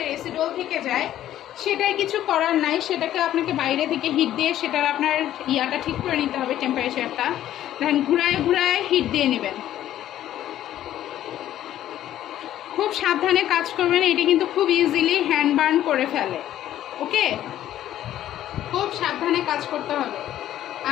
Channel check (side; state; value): right; quieter; 12.3 dB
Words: অ্যাসিডল থেকে যায়, সেটাই কিছু করার নাই, সেটাকে আপনাকে বাইরে থেকে হিট দিয়ে সেটার আপনার ইয়াটা ঠিক করে নিতে হবে, টেম্পারেচারটা। দেখেন ঘুরায় ঘুরায় হিট দিয়ে নেবেন, খুব সাবধানে কাজ করবেন। এটি কিন্তু খুব ইজিলি হ্যান্ড বার্ন করে ফেলে। ওকে, খুব সাবধানে কাজ করতে হবে।